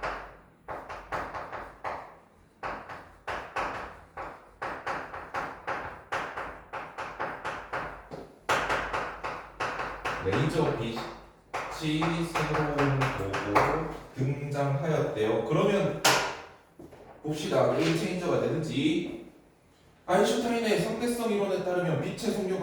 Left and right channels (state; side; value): identical; both; correlation 1.00